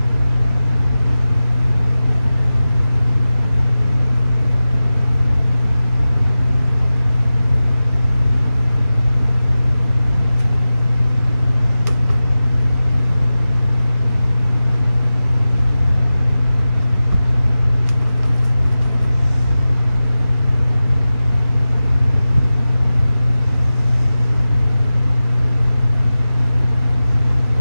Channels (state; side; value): inverted; both; correlation -0.94